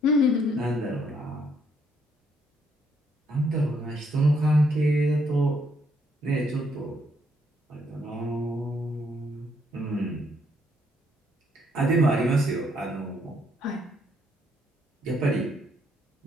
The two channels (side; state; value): both; normal; correlation 0.71